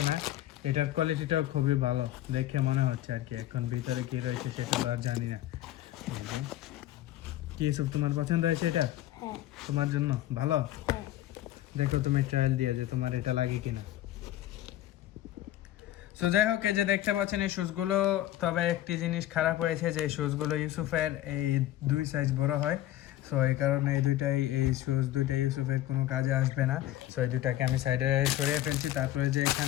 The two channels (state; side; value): quieter; right; 13.9 dB